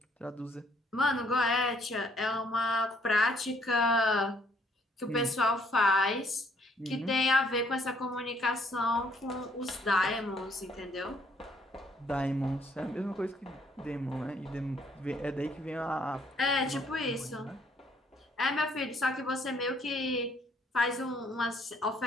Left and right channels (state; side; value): normal; both; correlation 0.66